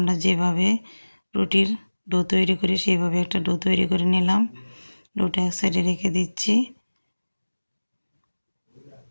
যেভাবে রুটির ডো তৈরি করি সেইভাবে একটা ডো তৈরি করে নিলাম। ডোটা এক সাইডে রেখে দিচ্ছি।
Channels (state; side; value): inverted; both; correlation -1.00